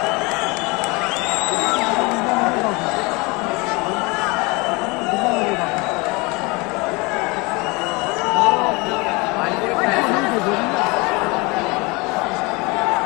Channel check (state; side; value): quieter; right; 26.2 dB